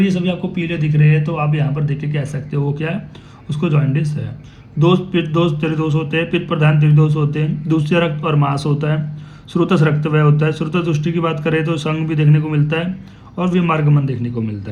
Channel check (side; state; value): both; identical; correlation 1.00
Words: सभी आपको पीले दिख रहे हैं तो आप यहाँ पर देख के कह सकते हो वो क्या है, उसको जॉन्डिस है। पित्त दोष त्रिदोष होते हैं, पित्त प्रधान त्रिदोष होते हैं। दूसरे रक्त और मांस होता है। श्रुतस रक्तवय होता है। श्रुतस दृष्टि की बात करें तो संघ भी देखने को मिलता है और विमार्गमन देखने को मिलता